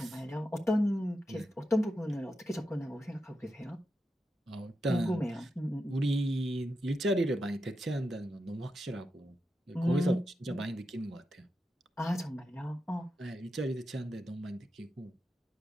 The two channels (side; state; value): both; normal; correlation 0.88